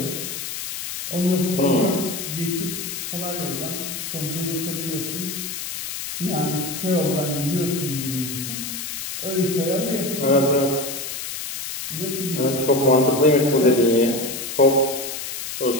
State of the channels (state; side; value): noise; left; hiss, 6 dB below the sound